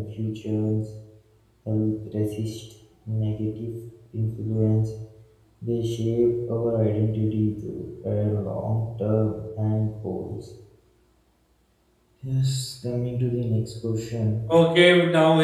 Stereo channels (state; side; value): identical; both; correlation 1.00